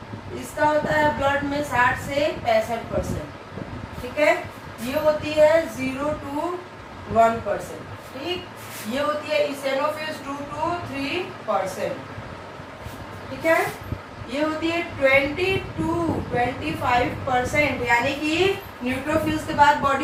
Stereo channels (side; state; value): both; identical; correlation 1.00